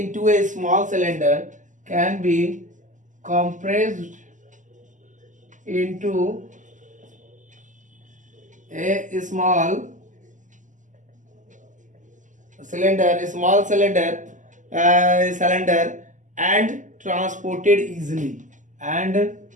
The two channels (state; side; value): late; left; 0.37 ms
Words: a small cylinder, can be compressed into a small cylinder and transported easily